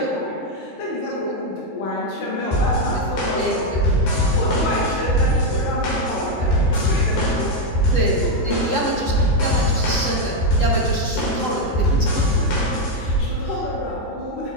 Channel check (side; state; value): right; late; 8.0 ms